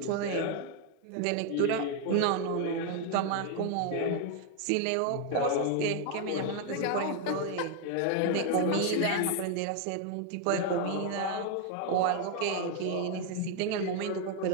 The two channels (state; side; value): different; both; correlation 0.01